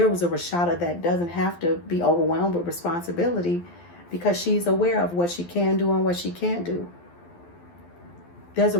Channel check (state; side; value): late; right; 12 ms